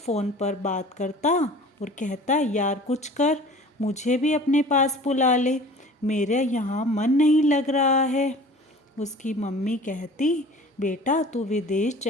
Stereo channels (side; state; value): both; normal; correlation 0.44